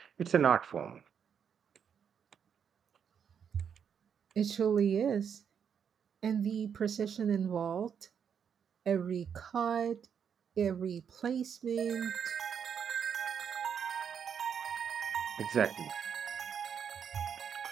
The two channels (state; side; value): quieter; left; 7.5 dB